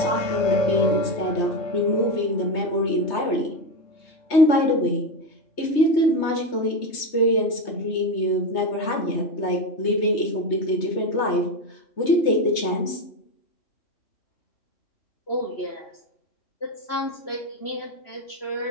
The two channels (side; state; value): right; late; 3.2 ms